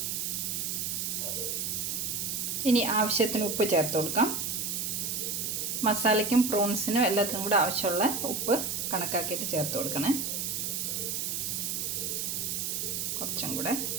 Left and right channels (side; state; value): right; noise; hiss, 1 dB below the sound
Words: ഇനി ആവശ്യത്തിന് ഉപ്പ് ചേർത്ത് കൊടുക്കാം. മസാലയ്ക്കും പ്രോൺസിനും എല്ലാത്തിനും കൂടെ ആവശ്യമുള്ള ഉപ്പ് കണക്കാക്കിയിട്ട് ചേർത്ത് കൊടുക്കണേ. കുറച്ചും കൂടെ.